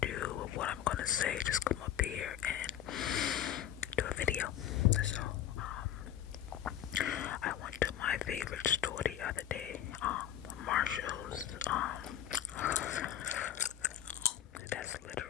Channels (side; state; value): right; quieter; 11.0 dB